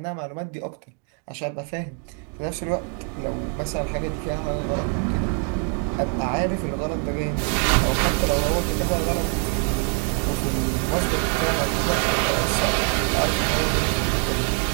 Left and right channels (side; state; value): left; quieter; 35.6 dB